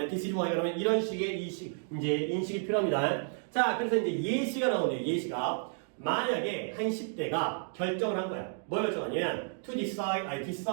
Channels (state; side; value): silent; left; 57 dB below the other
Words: this is why가 나오면 이런 식의 이제 인식이 필요합니다. 자, 그래서 이제 예시가 나오네요. 예시가. 만약에 한 10대가 결정을 한 거야. 뭘 결정하냐면 to decide,